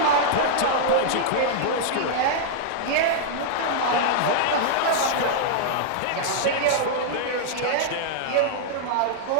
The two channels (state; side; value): different; both; correlation -0.01